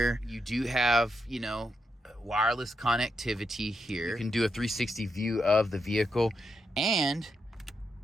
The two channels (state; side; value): normal; both; correlation 0.83